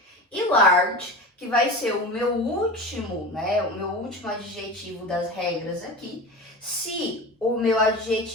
E large, que vai ser o meu último, né, o meu último adjetivo das regras aqui. Se o meu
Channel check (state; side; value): normal; both; correlation 0.30